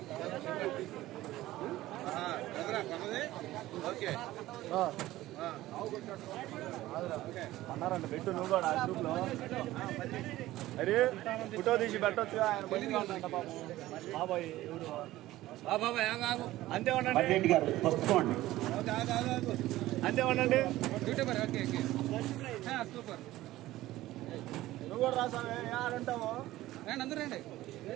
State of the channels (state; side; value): quieter; left; 16.1 dB